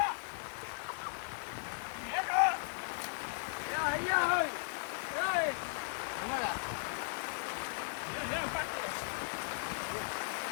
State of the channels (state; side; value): silent; right; digital silence